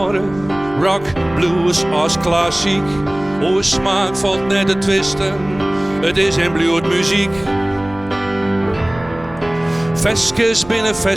rock, blues als klassiek. O smaak valt net te twisten, het is en bloed muziek. Veskes binnen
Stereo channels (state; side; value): noise; right; hum, 18 dB below the sound